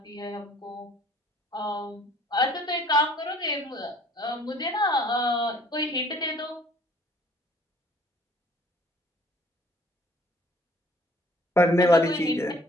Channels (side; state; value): both; normal; correlation 0.56